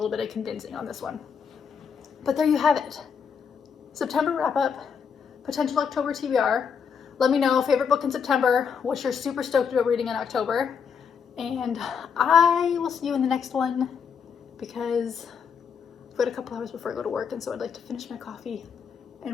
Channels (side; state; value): right; quieter; 6.7 dB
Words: bit of convincing on this one. But there you have it. September wrap up, potential October TBR. Let me know, favorite book in September, what you're super stoked about reading in October. And I will see you in the next one because I've got a couple hours before I go to work, and so I'd like to finish my coffee